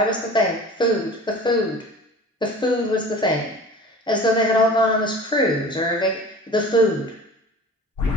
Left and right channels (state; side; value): normal; both; correlation 0.41